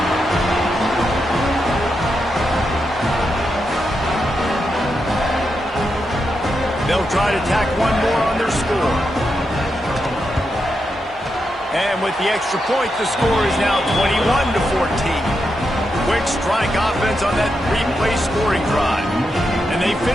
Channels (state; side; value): normal; both; correlation 0.85